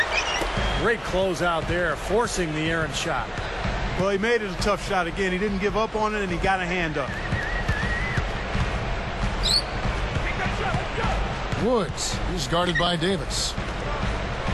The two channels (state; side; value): identical; both; correlation 1.00